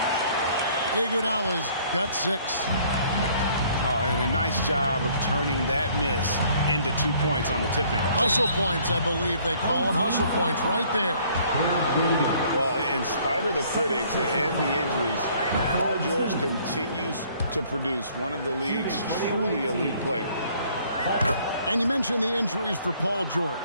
Iguodala's got 6. Oh, and a nice job of turning that miss into 2 points on the tip-in. Hustle points, I believe they call them. Hustle points right there. Well, in spite of the critics and the injuries, Paul George continues to produce one of the league's truly elite players. And you mentioned the injuries for Paul George.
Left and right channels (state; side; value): inverted; both; correlation -0.60